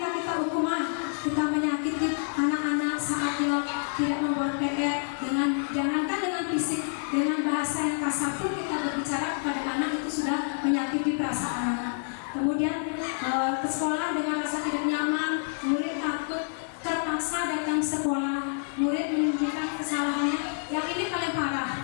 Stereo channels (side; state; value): right; silent; digital silence